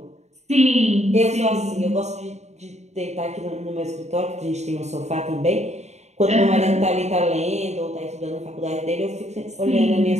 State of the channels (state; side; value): late; left; 0.32 ms